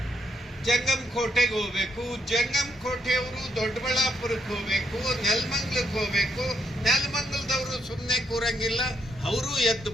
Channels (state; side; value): normal; both; correlation 0.76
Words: ಜಂಗಮಕೋಟೆಗೆ ಹೋಗ್ಬೇಕು, ಜಂಗಮಕೋಟೆಯವರು ದೊಡ್ಡಬಳ್ಳಾಪುರಕ್ಕೆ ಹೋಗ್ಬೇಕು, ನೆಲಮಂಗಲಕ್ಕೆ ಹೋಗ್ಬೇಕು, ನೆಲಮಂಗಲದವರು ಸುಮ್ಮನೆ ಕೂರಂಗಿಲ್ಲ, ಅವರು ಎದ್ದು